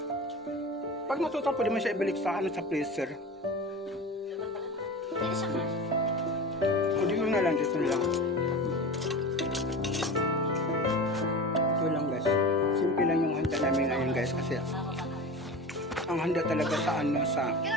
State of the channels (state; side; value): normal; both; correlation 0.30